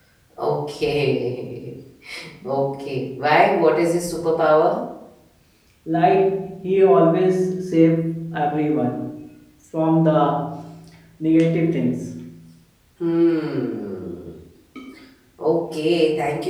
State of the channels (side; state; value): both; identical; correlation 1.00